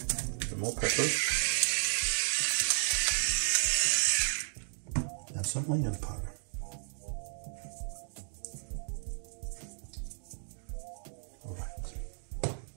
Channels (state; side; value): silent; left; digital silence